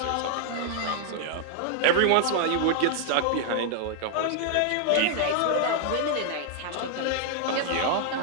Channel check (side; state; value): both; different; correlation 0.00